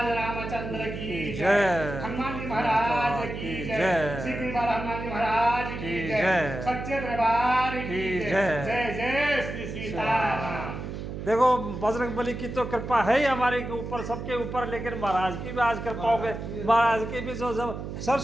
रामचंद्र की जय, हनुमान जी महाराज की जय, श्री हनुमान जी महाराज की जय, सच्चे दरबार की जय, जय जय श्री सीताराम। देखो बजरंगबली की तो कृपा है ही हमारे के ऊपर, सबके ऊपर, लेकिन महाराज की भी आज कृपा हो गई। महाराज की भी जो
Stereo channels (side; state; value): right; noise; hum, 7 dB below the sound